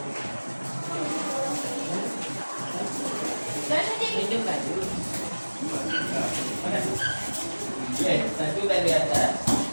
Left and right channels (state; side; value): inverted; both; correlation -1.00